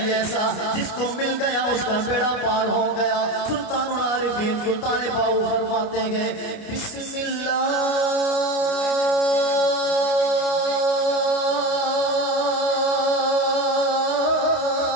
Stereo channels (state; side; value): late; right; 29 ms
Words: ایسا جس کو مل گیا اس کا بیڑا پار ہو گیا سلطان العارفین سلطان باؤ فرماتے گئے بسم اللہ